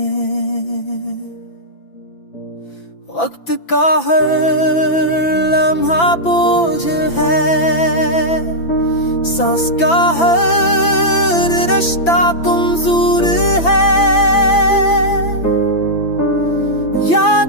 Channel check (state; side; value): late; right; 5.9 ms